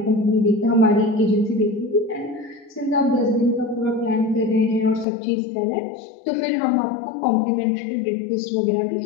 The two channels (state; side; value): drops out; right; at 5.1 s